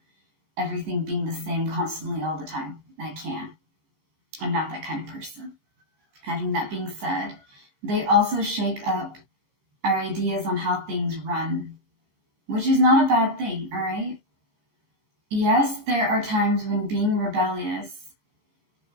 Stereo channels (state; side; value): late; left; 14 ms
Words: Everything being the same constantly all the time. I can't. I'm not that kind of person. Having that being said, they also shake up our ideas on how things run, which is not a bad thing, all right? Yes, there are times when being rebellious